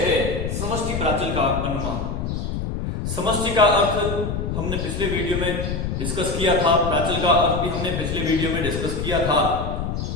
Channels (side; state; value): left; noise; rumble, 3 dB below the sound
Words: है समष्टि प्राचल का अनुमान। समष्टि का अर्थ हमने पिछले वीडियो में डिस्कस किया था, प्राचल का अर्थ भी हमने पिछले वीडियो में डिस्कस किया था,